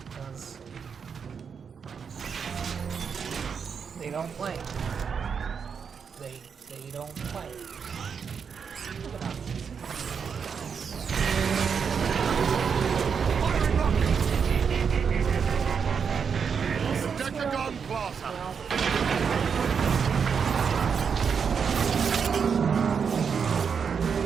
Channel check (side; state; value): left; quieter; 6.4 dB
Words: because they don't play. They don't play. Look at that. Decagon Plaza.